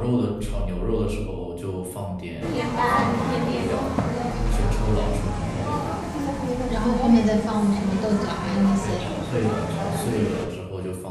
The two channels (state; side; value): identical; both; correlation 1.00